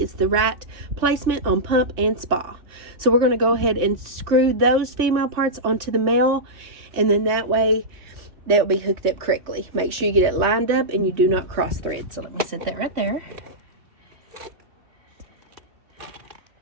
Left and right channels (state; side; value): late; left; 3.1 ms